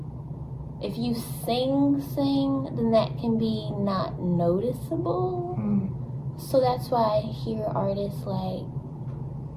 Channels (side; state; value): both; identical; correlation 1.00